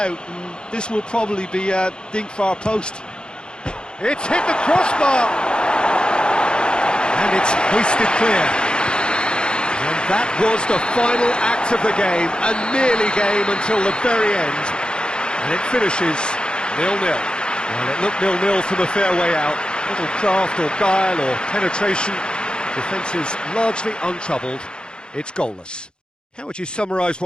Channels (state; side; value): late; right; 0.049 ms